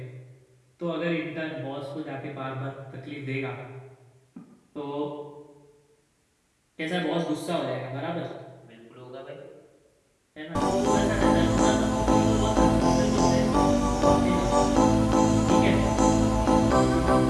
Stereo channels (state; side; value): identical; both; correlation 1.00